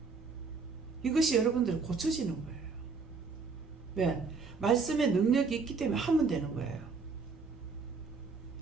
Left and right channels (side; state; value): left; quieter; 4.7 dB